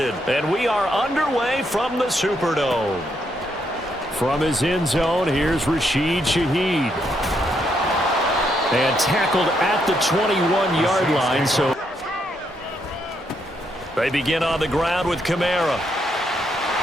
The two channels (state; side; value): normal; both; correlation 0.77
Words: And we are underway from the Superdome. From his end zone, here's Rashid Shaheed. And tackled at the 21-yard line. So they begin on the ground with Kamara.